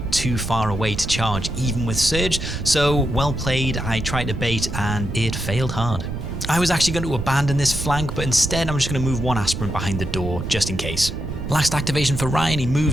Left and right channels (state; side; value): noise; right; rumble, 6 dB below the sound